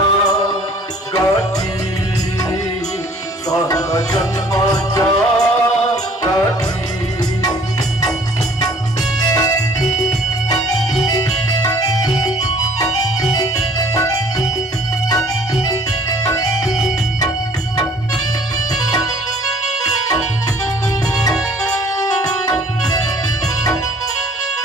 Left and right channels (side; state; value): both; normal; correlation 0.54